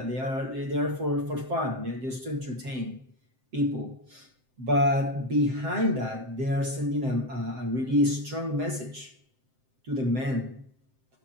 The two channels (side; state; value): left; late; 7.7 ms